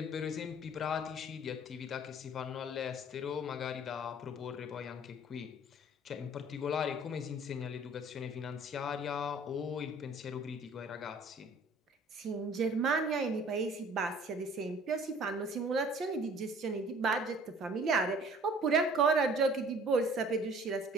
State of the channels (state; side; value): normal; both; correlation 0.51